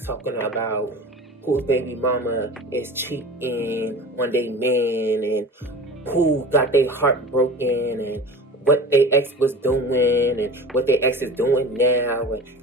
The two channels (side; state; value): both; normal; correlation 0.36